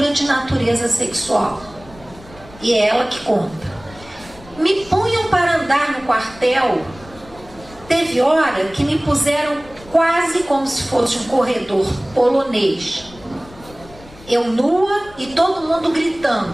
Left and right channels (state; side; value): noise; left; rumble, 21 dB below the sound